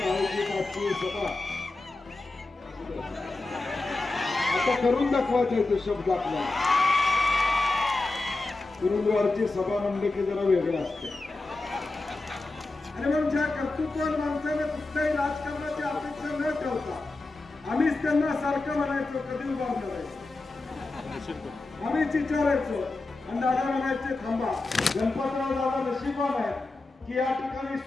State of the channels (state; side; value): quieter; right; 3.2 dB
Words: आयोजित आजची सभा आता करून दाखवायचा तो शब्द आपल्याला. गुरुद्वारची सभा म्हणले की जरा वेगळं असते आणि मग ज्या कर्तृत्वान माणसाने कुठल्याही राजकारणाची अपेक्षा न ठेवता आम्हीच त्यांना सारखं म्हणायचो कधी उभारणार आहे आम्हीच विचारायचो आणि दादा म्हणायचे थांबा. गणपतराव दादा नशीबवान आहे की या ठिकाणी